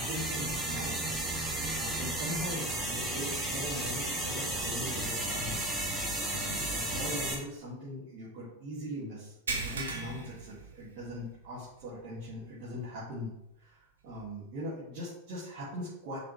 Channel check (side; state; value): both; normal; correlation 0.27